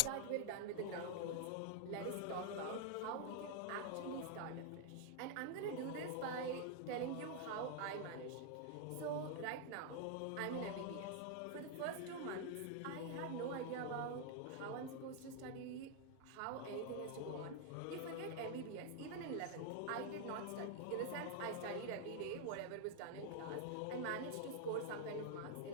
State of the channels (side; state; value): both; different; correlation 0.00